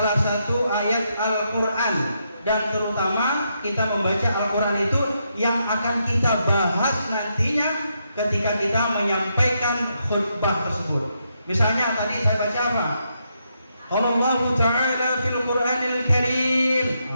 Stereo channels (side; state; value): both; inverted; correlation -0.80